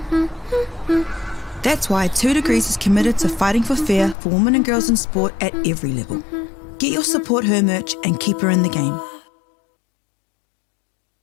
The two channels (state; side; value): drops out; right; at 4.2 s